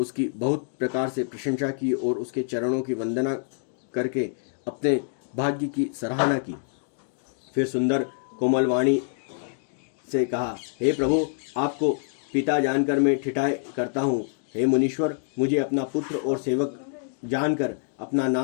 बहुत प्रकार से प्रशंसा की और उसके चरणों की वंदना करके अपने भाग्य की सराहना की। फिर सुंदर कोमलवाणी से कहा, हे प्रभु, आपको पिता जानकर मैं ठिठाई करता हूँ। हे मुनीश्वर, मुझे अपना पुत्र और सेवक जानकर अपना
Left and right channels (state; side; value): silent; right; digital silence